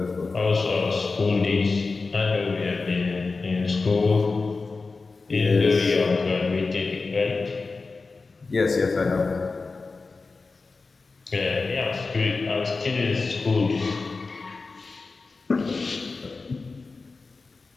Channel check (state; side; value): quieter; right; 4.0 dB